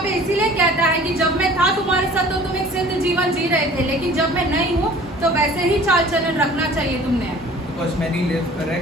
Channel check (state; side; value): normal; both; correlation 0.48